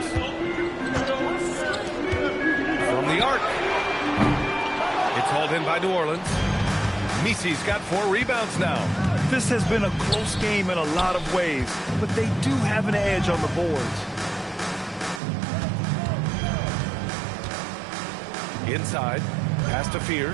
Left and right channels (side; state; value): left; drops out; at 15.2 s